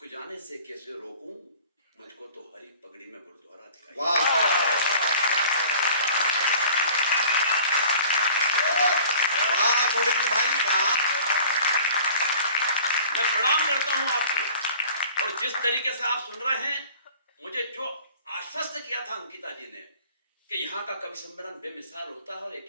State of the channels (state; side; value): inverted; both; correlation -0.47